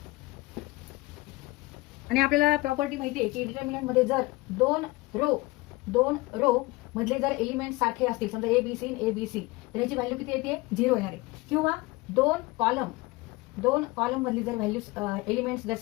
आणि आपल्याला प्रॉपर्टी माहिती आहे की डिटरमिनंट मध्ये जर दोन रो मधले जर एलिमेंट सारखे असतील, समजा A B C A B C, तर याची व्हॅल्यू किती येते? 0 येणार आहे. किंवा दोन कॉलम मधली जर व्हॅल्यू एलिमेंट्स जर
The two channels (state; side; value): quieter; right; 22.2 dB